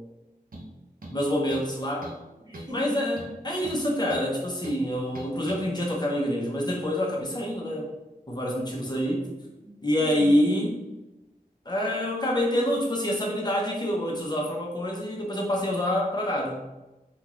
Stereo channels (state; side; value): normal; both; correlation 0.72